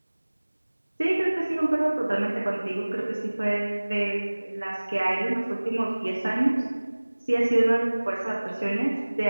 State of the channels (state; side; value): inverted; both; correlation -1.00